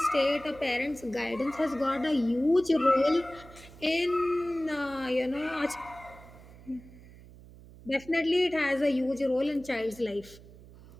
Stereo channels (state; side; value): noise; right; hum, 20 dB below the sound